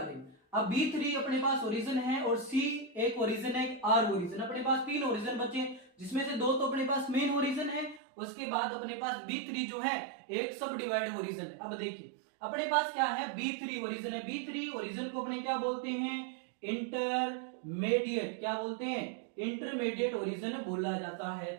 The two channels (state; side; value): drops out; left; at 8.0 s